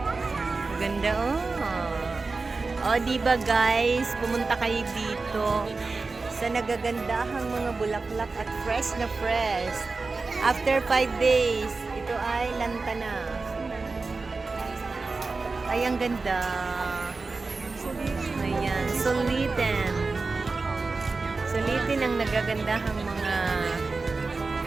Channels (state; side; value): quieter; left; 3.9 dB